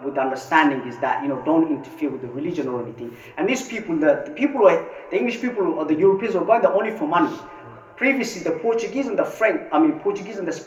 understanding is that don't interfere with the religion or anything. And these people, the English people or the Europeans were going there only for money. Previously, the Portuguese and the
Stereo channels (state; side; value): identical; both; correlation 1.00